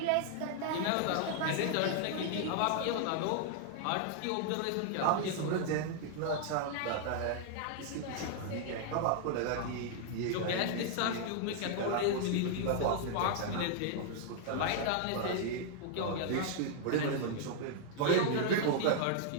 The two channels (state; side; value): different; both; correlation 0.00